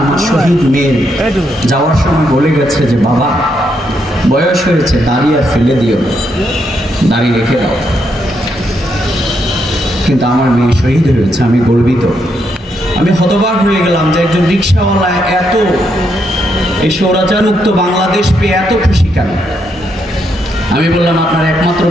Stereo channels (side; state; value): both; normal; correlation 0.78